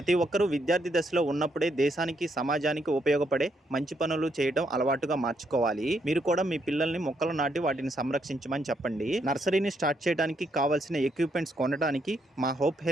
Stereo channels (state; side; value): normal; both; correlation 0.76